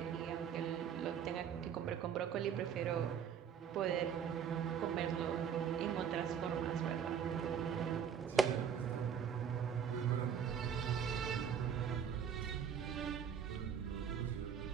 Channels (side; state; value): left; quieter; 7.7 dB